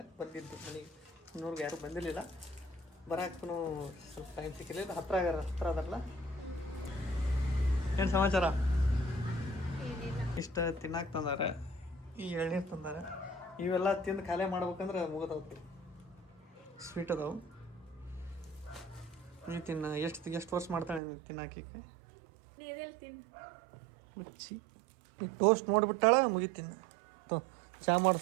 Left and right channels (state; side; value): drops out; left; at 21.0 s